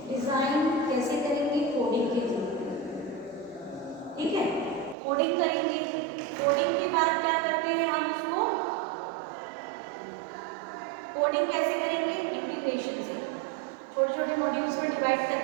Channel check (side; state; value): left; drops out; at 5.0 s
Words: डिजाइन कैसे करेंगे, कोडिंग के थ्रू, ठीक है, कोडिंग करेंगे, कोडिंग के बाद क्या करते हैं हम उसको, कोडिंग कैसे करेंगे, इंटीग्रेशन से, छोटे छोटे मॉड्यूल्स को डिवाइड